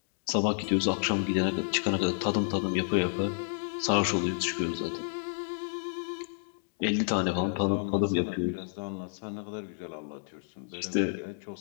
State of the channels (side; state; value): right; silent; digital silence